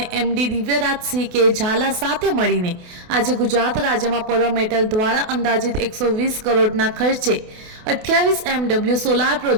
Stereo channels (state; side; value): late; left; 28 ms